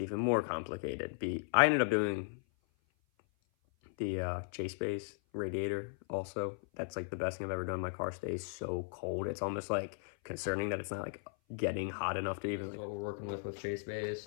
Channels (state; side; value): silent; right; 53 dB below the other